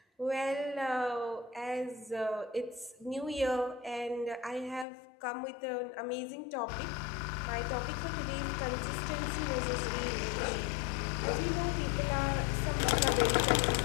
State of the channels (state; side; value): drops out; right; at 4.9 s